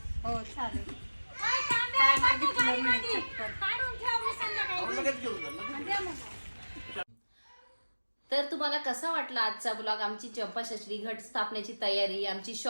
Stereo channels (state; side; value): inverted; both; correlation -1.00